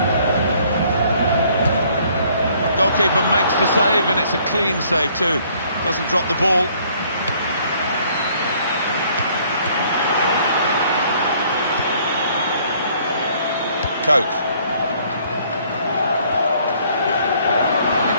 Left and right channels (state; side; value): inverted; both; correlation -0.61